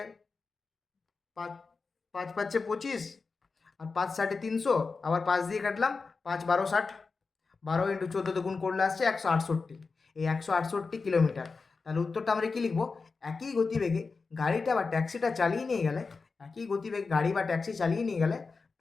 5 5 5 25 আর 5 60 300, আবার 5 দিয়ে কাটলাম, 5 12 60, 12 ইন্টু 14 গুণ করলে আসছে 168। এই 168 কিলোমিটার। তাহলে উত্তরটা আমরা কি লিখবো, একই গতিবেগে গাড়িটা বা ট্যাক্সিটা চালিয়ে নিয়ে গেলে, একই গতিবেগে গাড়ি বা ট্যাক্সি চালিয়ে নিয়ে গেলে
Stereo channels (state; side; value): quieter; right; 4.4 dB